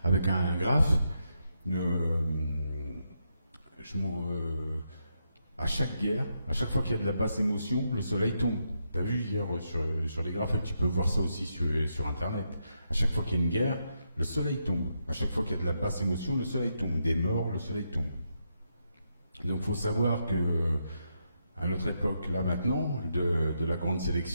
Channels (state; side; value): inverted; both; correlation -0.82